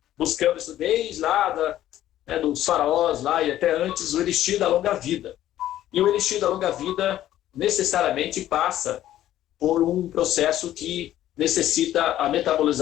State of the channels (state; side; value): quieter; right; 12.9 dB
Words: buscando isso desde lá dos faraós lá e até antes, o elixir da longa vida. E o elixir da longa vida necessariamente passa por um processo que necessita